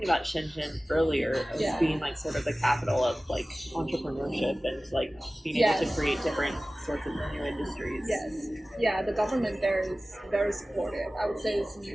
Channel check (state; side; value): normal; both; correlation 0.97